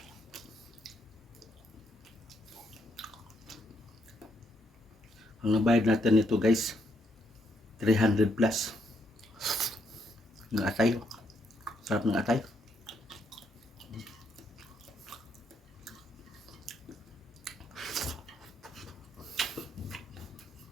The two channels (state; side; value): normal; both; correlation 0.75